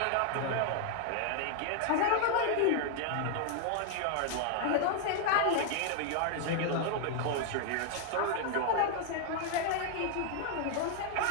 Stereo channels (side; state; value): both; different; correlation 0.00